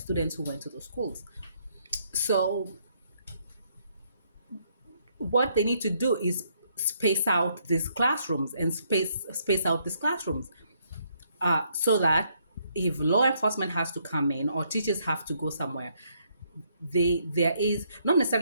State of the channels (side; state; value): both; inverted; correlation -0.71